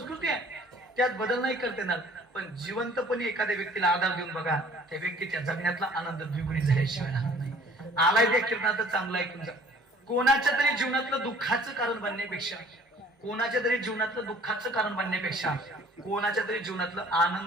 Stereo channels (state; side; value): normal; both; correlation 0.53